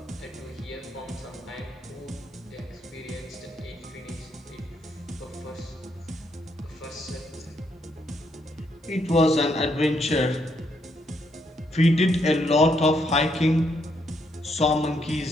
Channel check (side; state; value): both; normal; correlation 0.75